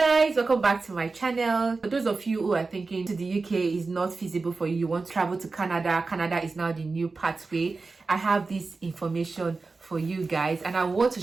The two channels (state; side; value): quieter; left; 4.0 dB